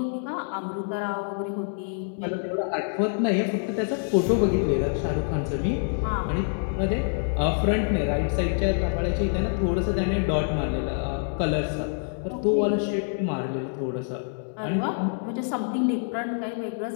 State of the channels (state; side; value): silent; right; 61 dB below the other